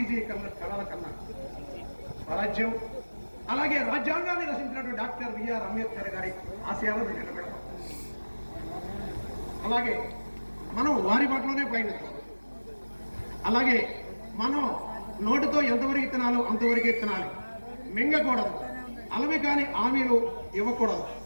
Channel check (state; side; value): inverted; both; correlation -1.00